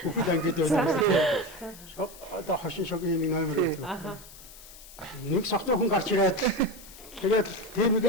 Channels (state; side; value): noise; left; hiss, 18 dB below the sound